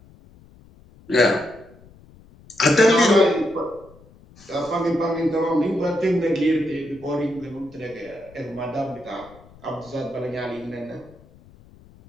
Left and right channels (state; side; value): noise; left; rumble, 25 dB below the sound